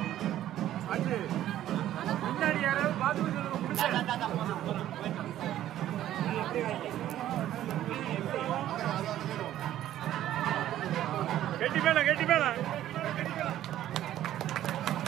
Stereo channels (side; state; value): left; quieter; 12.6 dB